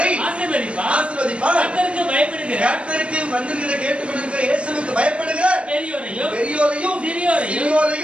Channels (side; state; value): left; late; 0.060 ms